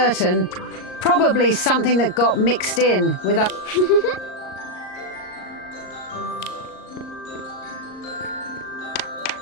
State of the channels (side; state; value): right; late; 38 ms